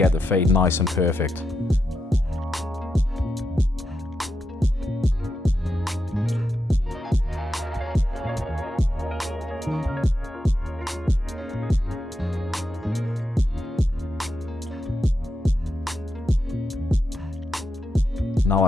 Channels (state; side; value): normal; both; correlation 0.85